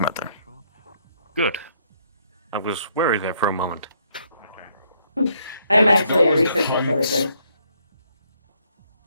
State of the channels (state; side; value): inverted; both; correlation -0.70